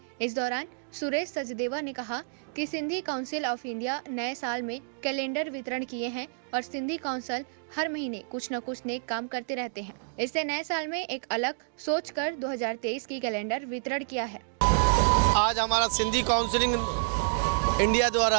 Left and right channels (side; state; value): left; silent; digital silence